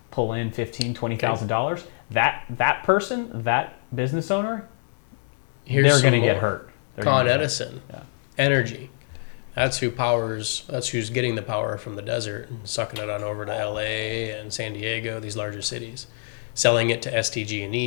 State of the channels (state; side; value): silent; right; 62 dB below the other